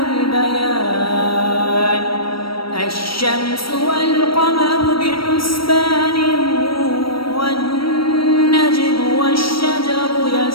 البيان. الشمس والقمر بحسبان والنجم والشجر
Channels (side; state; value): right; late; 0.75 ms